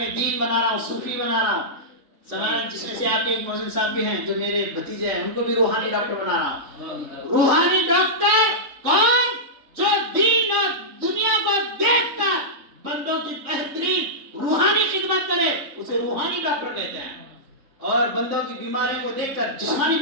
دین بنا رہا ہوں, صوفی بنا رہا ہوں. سمجھ, جس میں سے آپ کے ایک موزن صاحب بھی ہیں جو میرے بھتیجے ہیں, ان کو بھی روحانی ڈاکٹر بنا رہا ہوں. روحانی ڈاکٹر کون؟ جو دین اور دنیا کو دیکھ کر بندوں کی بہترین روحانی خدمت کرے, اسے روحانی ڈاکٹر کہتے ہیں. اور بندوں کی بیماریوں کو دیکھ کر جسمانی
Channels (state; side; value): late; left; 3.5 ms